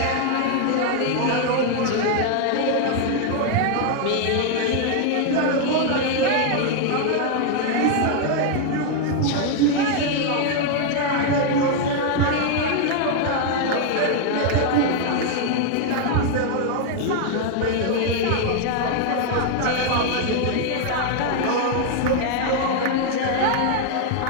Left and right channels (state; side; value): different; both; correlation 0.00